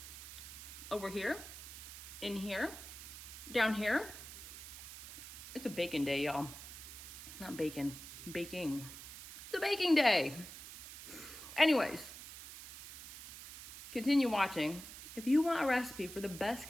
over here, in here, down here. It's a baking day, y'all. Not bacon, baking. It's a baking day. Anyways, continue watching. If you want a recipe for the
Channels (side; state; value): right; noise; hiss, 12 dB below the sound